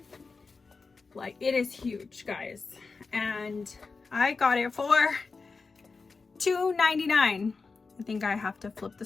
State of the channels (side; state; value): right; quieter; 4.4 dB